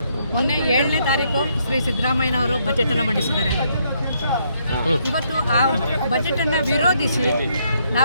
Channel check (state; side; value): inverted; both; correlation -0.73